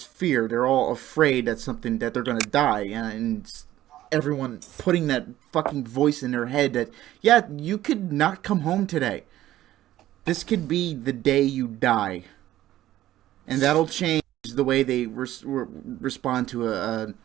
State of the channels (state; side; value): quieter; left; 14.1 dB